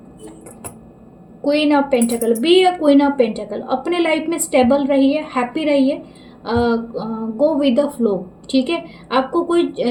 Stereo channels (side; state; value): both; identical; correlation 1.00